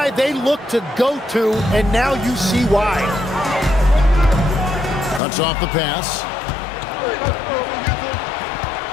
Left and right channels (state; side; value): drops out; right; at 5.2 s